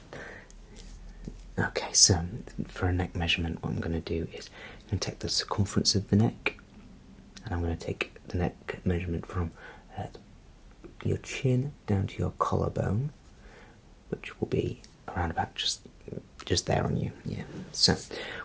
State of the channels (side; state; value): both; identical; correlation 1.00